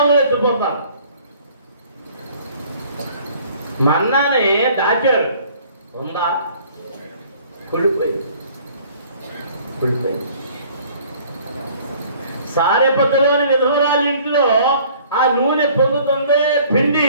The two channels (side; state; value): both; inverted; correlation -0.54